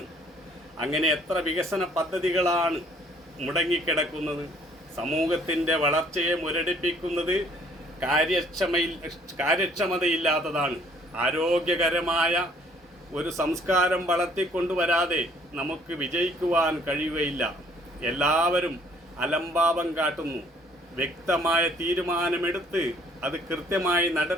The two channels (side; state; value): both; normal; correlation 0.60